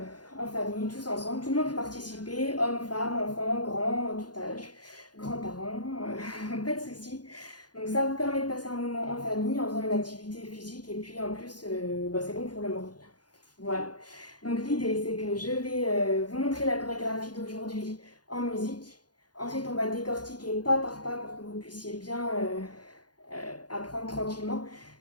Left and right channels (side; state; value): right; late; 0.69 ms